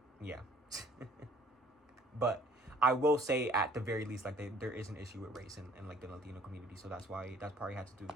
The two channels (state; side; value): normal; both; correlation 0.56